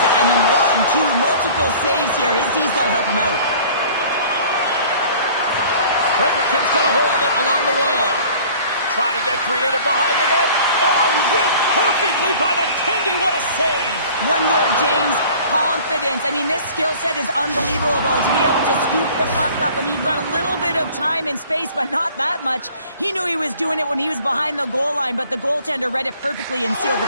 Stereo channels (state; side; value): inverted; both; correlation -0.49